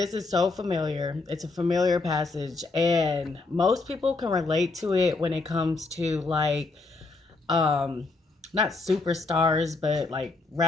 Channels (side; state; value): right; quieter; 3.6 dB